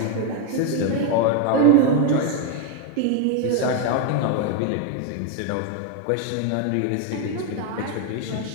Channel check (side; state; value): both; different; correlation 0.01